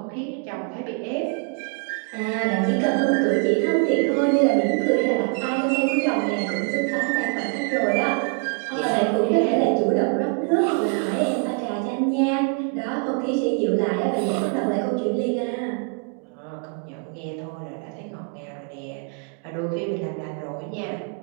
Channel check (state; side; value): quieter; left; 37.3 dB